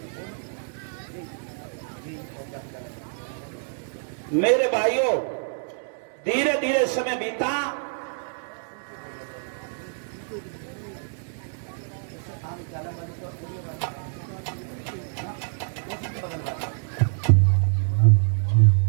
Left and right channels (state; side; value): silent; left; digital silence